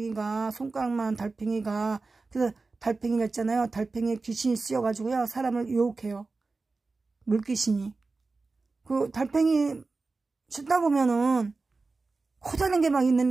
손가락만한 달팽이가. 그래서 달팽이가 있잖아요. 달팽이에 귀신이 씌어가지고요. 사람을 유혹해요. 물귀신이. 그 달팽이 씻다 보면은 커다란 게 막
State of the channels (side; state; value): left; quieter; 3.8 dB